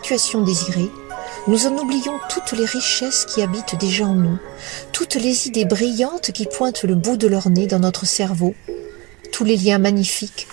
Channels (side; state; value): left; quieter; 25.5 dB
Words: désirée, nous en oublions toutes les richesses qui habitent déjà en nous, toutes les idées brillantes qui pointent le bout de leur nez dans notre cerveau, tous les liens magnifiques